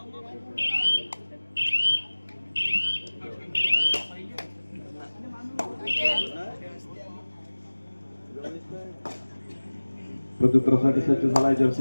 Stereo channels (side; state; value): both; inverted; correlation -1.00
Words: प्रत्युत्तरासाठी सज्ज झालाय